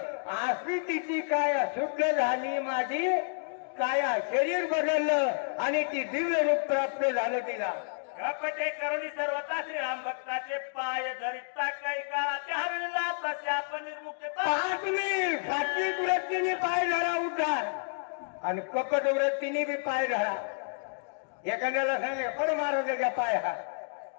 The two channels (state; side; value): silent; right; digital silence